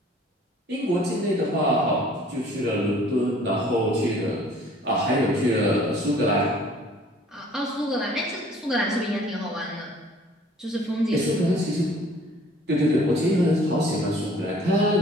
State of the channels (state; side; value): normal; both; correlation 0.53